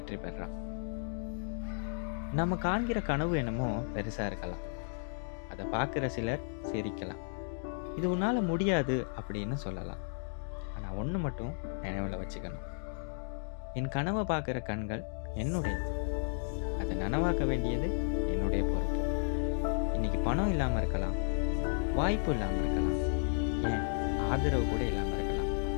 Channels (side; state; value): right; silent; digital silence